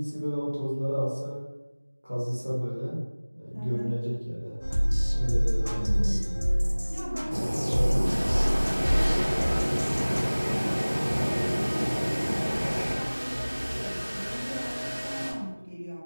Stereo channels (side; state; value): both; inverted; correlation -1.00